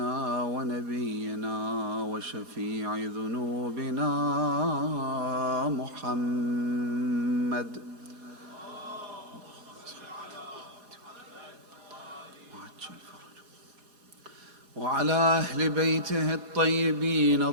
ونبينا وشفيع ذنوبنا محمد وعلى أهل بيته الطيبين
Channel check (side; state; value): left; late; 4.2 ms